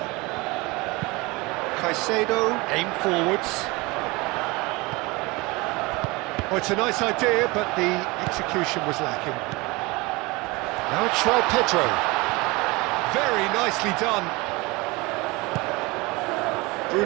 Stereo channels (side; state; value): left; quieter; 24.2 dB